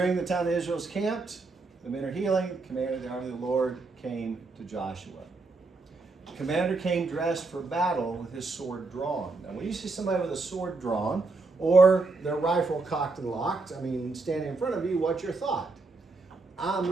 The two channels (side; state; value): left; quieter; 3.7 dB